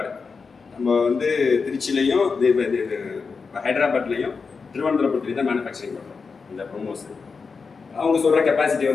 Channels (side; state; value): right; quieter; 4.9 dB